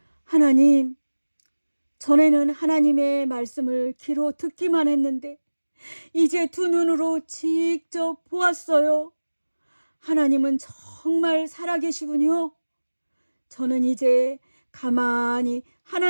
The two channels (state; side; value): inverted; both; correlation -1.00